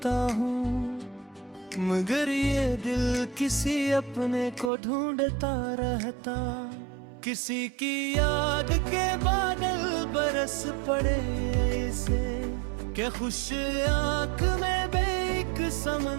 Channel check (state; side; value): drops out; left; at 4.7 s